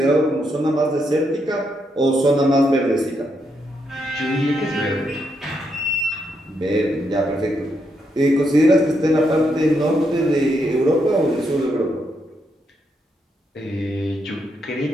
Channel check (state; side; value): normal; both; correlation 0.79